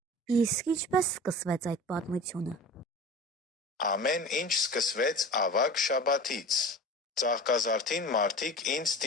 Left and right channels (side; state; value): both; normal; correlation 0.36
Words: Իսկ ինչպես սկսվեց այդ պատմությունը։ Ամեն ինչ սկսվեց ավագ շաբաթից։ Ծաղկազարդին մարդիկ ինձ